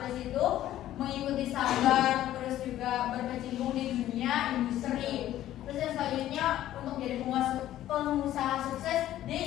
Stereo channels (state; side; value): quieter; right; 13.1 dB